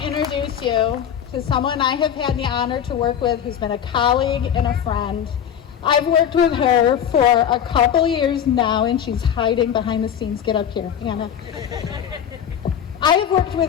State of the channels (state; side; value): quieter; right; 8.9 dB